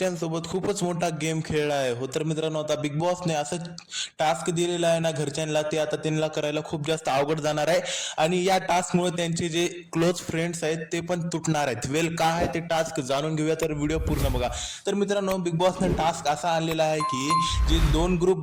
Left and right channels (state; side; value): identical; both; correlation 1.00